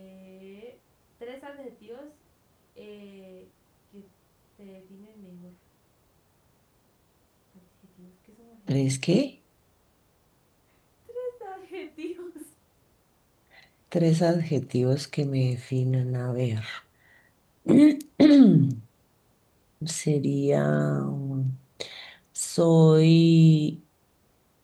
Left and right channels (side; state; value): both; identical; correlation 1.00